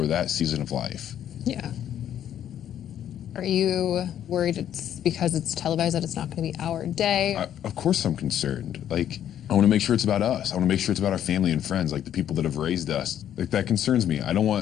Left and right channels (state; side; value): quieter; right; 10.4 dB